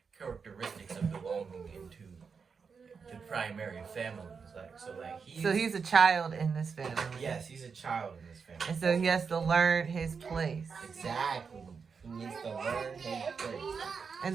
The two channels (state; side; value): quieter; left; 5.6 dB